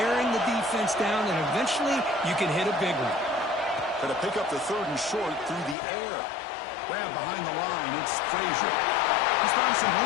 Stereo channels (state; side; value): drops out; right; at 5.8 s